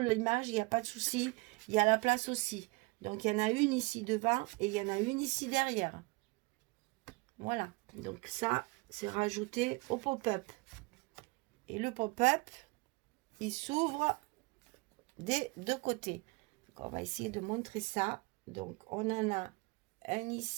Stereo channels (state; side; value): quieter; left; 26.0 dB